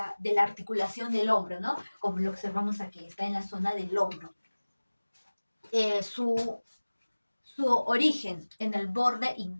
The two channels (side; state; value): both; inverted; correlation -1.00